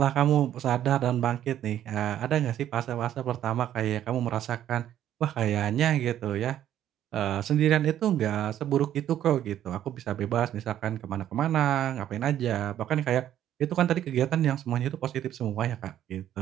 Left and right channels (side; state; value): left; quieter; 11.3 dB